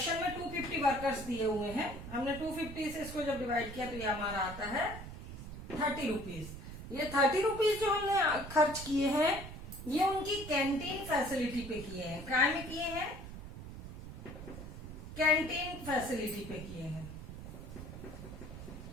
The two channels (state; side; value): noise; right; rumble, 11 dB below the sound